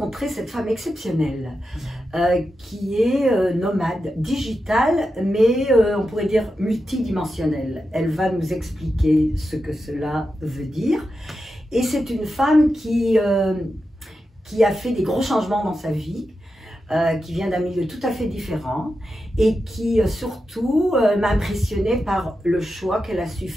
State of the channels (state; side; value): normal; both; correlation 0.89